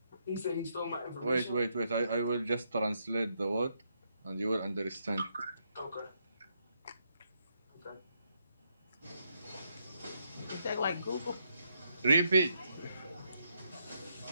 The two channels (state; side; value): inverted; both; correlation -0.77